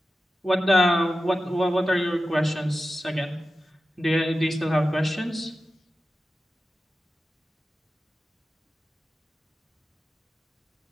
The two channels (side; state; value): both; normal; correlation 0.92